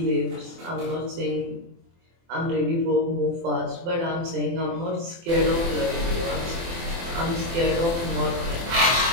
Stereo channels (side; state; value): left; late; 24 ms